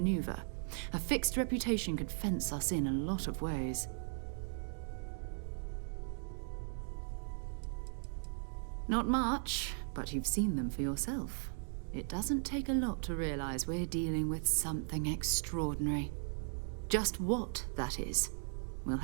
A fixed reputation could fence us in a lot of ways. Not much, but you've seen them for yourself. It doesn't take a lot to realize we're dealing with something extraordinary. Just what that is, we'll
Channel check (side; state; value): left; silent; digital silence